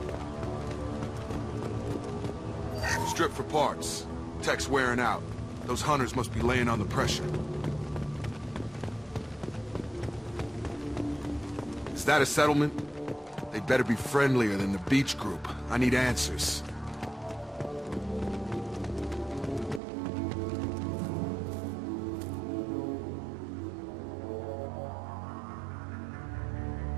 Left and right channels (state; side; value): drops out; left; at 19.8 s